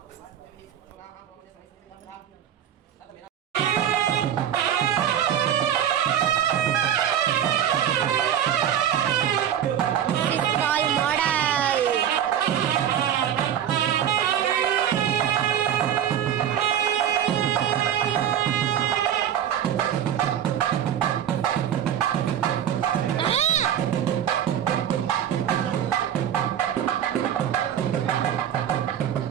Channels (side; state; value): left; quieter; 9.9 dB